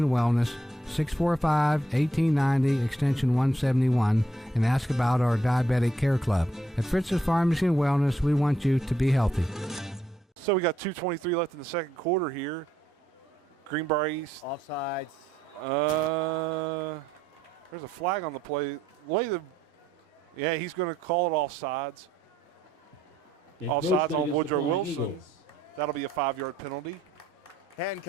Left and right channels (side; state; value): both; normal; correlation 0.73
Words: Wellness, 645-1890, extension 171, and ask about our Diabetic Care Club. At Fritz's Pharmacy and Wellness, we want you to be healthy. So we got 2:23 left in the second quarter here. Greenbrier East. Offsides. There's a flag on the play. Yeah, he's going to call it offsides. Offsides on Woodrow Wilson. That'll be a 5-yard penalty.